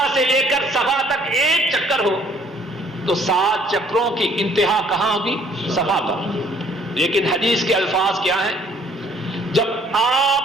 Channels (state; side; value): normal; both; correlation 0.60